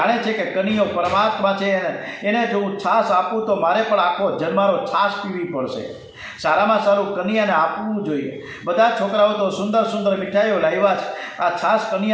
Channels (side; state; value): both; identical; correlation 1.00